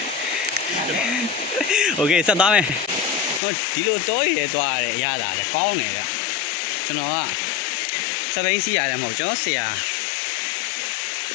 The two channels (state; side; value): drops out; right; at 3.4 s